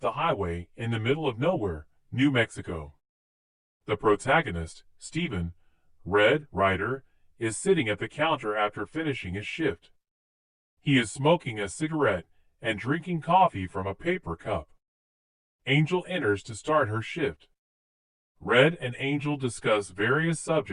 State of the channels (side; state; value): both; identical; correlation 1.00